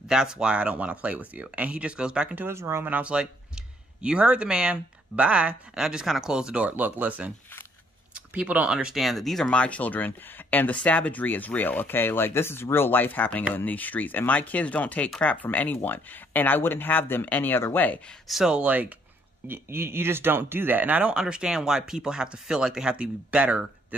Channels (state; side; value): normal; both; correlation 0.67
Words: that's why I don't want to play with you. And he just goes back into his room. And I was like, you heard the man. Bye. And I just kind of closed the door. Look, listen. People don't understand that these are my children and the savagery is real, okay? Like, this is real life happening in these streets. And my kids don't take crap from anyone. And I wouldn't have them any other way. So, like, you just don't do that. And I don't understand why people have to feel like they have to be better